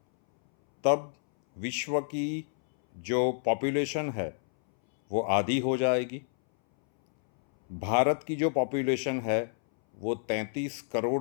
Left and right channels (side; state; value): right; silent; 59 dB below the other